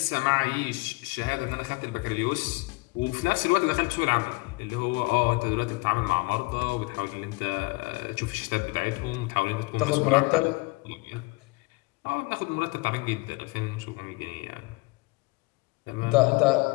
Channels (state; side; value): quieter; right; 25.3 dB